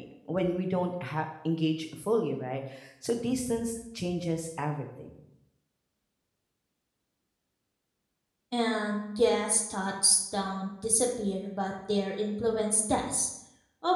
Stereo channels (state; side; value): identical; both; correlation 1.00